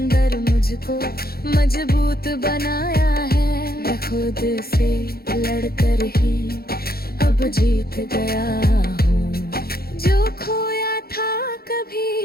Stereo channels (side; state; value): right; late; 0.44 ms